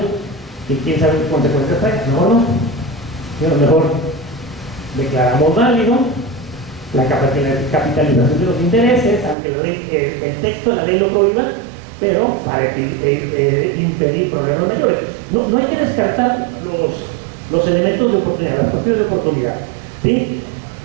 que quién sabe qué consecuencias trae. No. Mejor declaramos válido la capitalización de los intereses, aunque el texto de la ley lo prohíba, pero para impedir problemas mayores. No hay que descartar los elementos de oportunidad, las cuestiones de oportunidad. ¿Sí?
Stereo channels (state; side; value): drops out; left; at 9.3 s